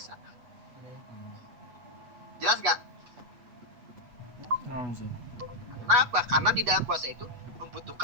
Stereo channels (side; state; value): left; late; 8.2 ms